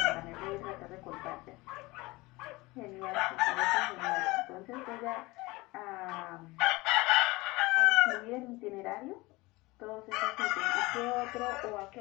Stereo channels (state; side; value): quieter; right; 22.1 dB